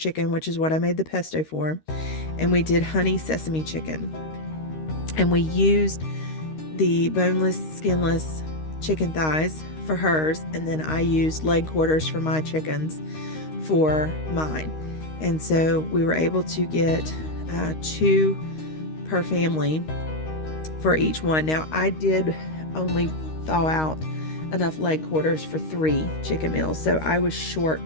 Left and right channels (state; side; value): late; right; 13 ms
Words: chicken, which is what I made the pesto for, and we did honey sesame chicken. And we used the boneless, skinless chicken thighs for hers, and then I used leg quarters for my chickens for mine. And so we were able to get 2 per family for each one. Now, I did only thaw out enough leg quarters for 3 chicken meals, so I was short